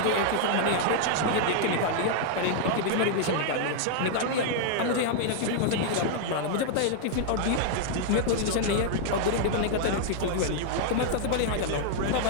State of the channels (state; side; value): different; both; correlation -0.01